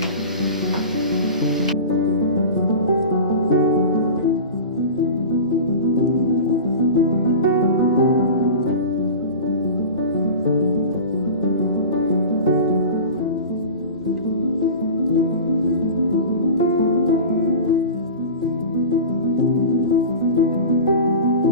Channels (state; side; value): inverted; both; correlation -0.33